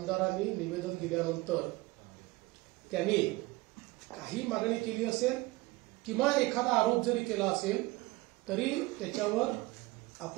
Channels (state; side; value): quieter; left; 21.3 dB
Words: निवेदन दिल्यानंतर त्यांनी काही मागणी केली असेल किंवा एखादा आरोप जरी केला असेल तरी त्याच्यावर